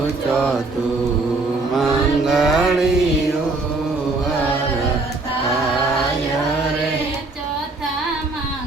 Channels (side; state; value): left; quieter; 3.3 dB